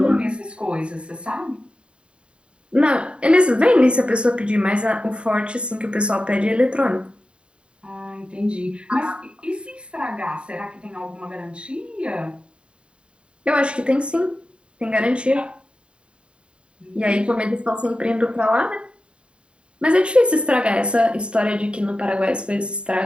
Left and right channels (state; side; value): late; left; 0.054 ms